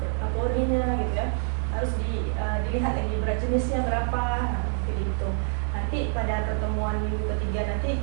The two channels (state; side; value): silent; left; 60 dB below the other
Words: porinya gitu ya. Harus dilihat lagi berat jenisnya berapa, dihitung. Nanti pada pertemuan minggu ketiga nanti